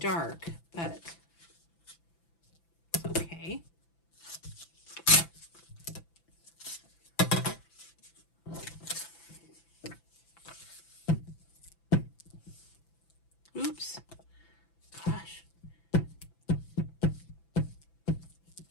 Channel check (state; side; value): late; right; 6.0 ms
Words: but it's okay. Oops. Gosh.